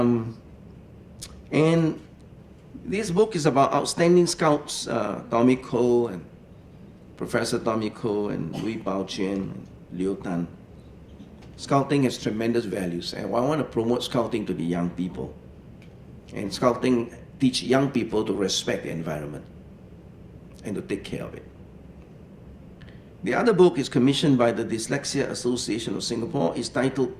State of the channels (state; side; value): identical; both; correlation 1.00